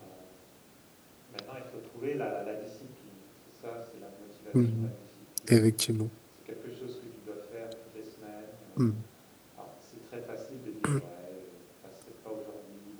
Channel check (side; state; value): both; identical; correlation 1.00